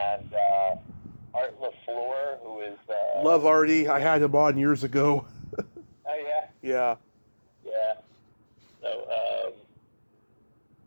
and Art LaFleur, who is Love Artie. I had him on years ago. oh yeah, Yeah. yeah. So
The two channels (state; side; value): inverted; both; correlation -1.00